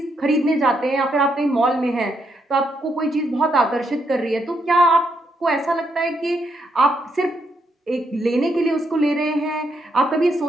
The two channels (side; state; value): both; normal; correlation 0.77